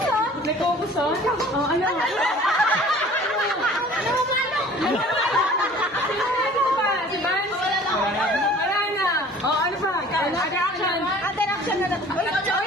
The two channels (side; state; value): both; normal; correlation 0.48